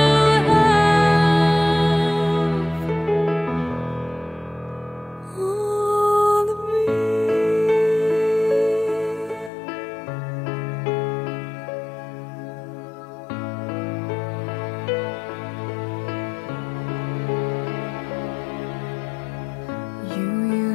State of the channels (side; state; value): right; drops out; at 9.5 s